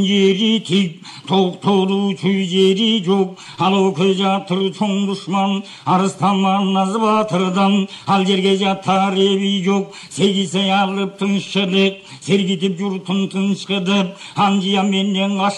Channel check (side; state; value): both; identical; correlation 1.00